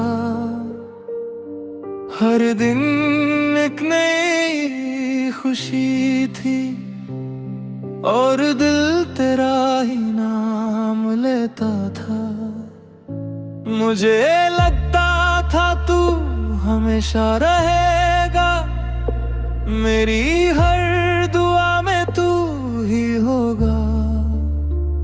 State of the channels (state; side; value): identical; both; correlation 1.00